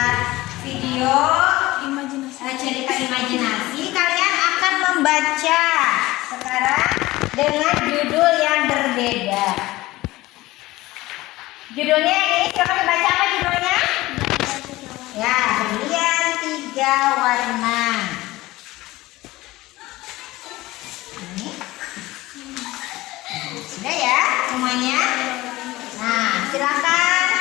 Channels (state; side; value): quieter; right; 18.6 dB